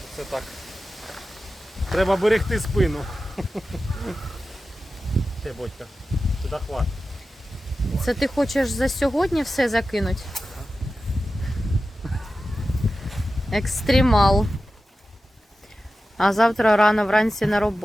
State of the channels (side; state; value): both; normal; correlation 0.93